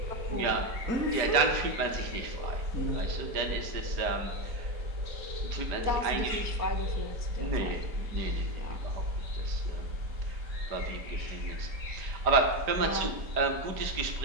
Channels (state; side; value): late; left; 5.0 ms